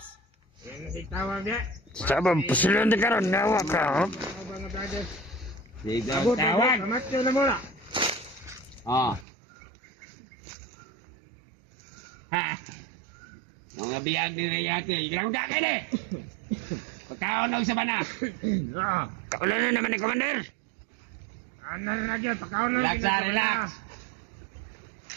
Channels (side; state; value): left; drops out; at 9.2 s